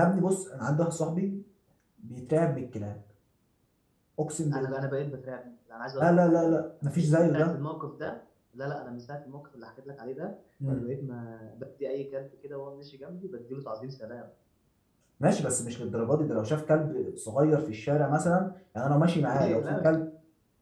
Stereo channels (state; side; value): identical; both; correlation 1.00